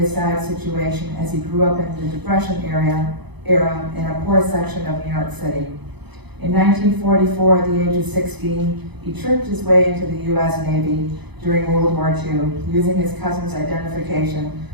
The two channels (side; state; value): left; late; 0.99 ms